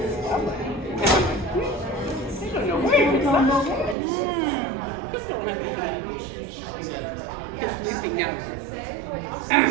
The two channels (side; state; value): left; drops out; at 4.0 s